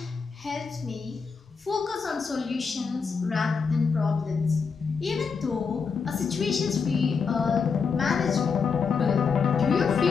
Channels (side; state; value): right; quieter; 5.5 dB